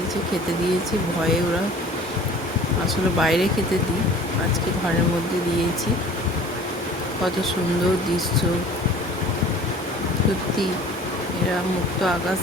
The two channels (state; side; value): normal; both; correlation 0.46